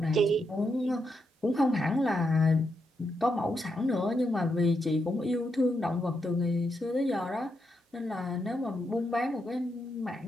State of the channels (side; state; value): both; normal; correlation 0.82